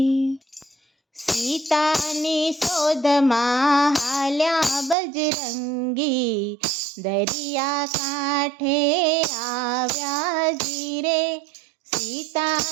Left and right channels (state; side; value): drops out; left; at 5.0 s